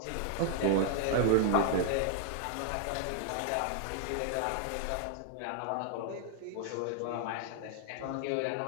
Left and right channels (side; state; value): both; different; correlation 0.00